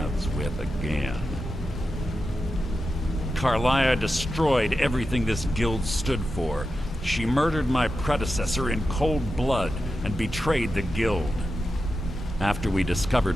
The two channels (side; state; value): both; normal; correlation 0.90